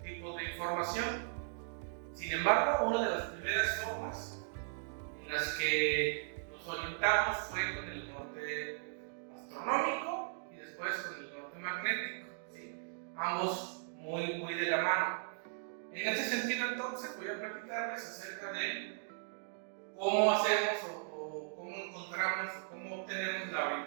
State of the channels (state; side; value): silent; left; digital silence